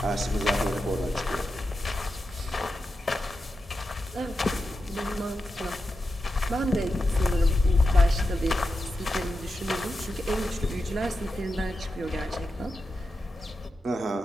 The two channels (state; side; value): normal; both; correlation 0.89